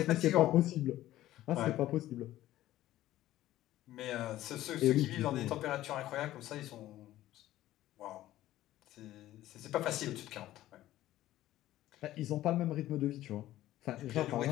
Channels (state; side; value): quieter; right; 14.6 dB